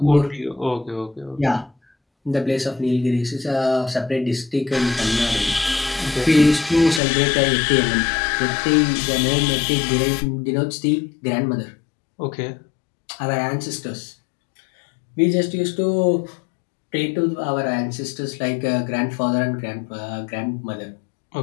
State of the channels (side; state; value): right; drops out; at 7.0 s